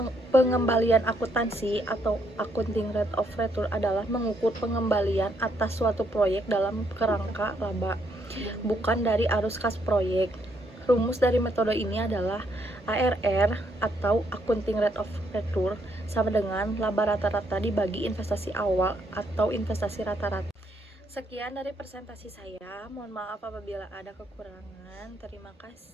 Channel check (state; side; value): normal; both; correlation 0.73